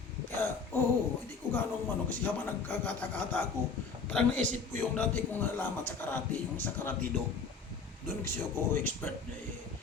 Kaya, hindi ko ganong kasi habang nagkakata-kata ako, parang naisip ko yung dati kong nalaman sa karate, yung sa karatido. Doon kasi ako expert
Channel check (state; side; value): quieter; right; 5.0 dB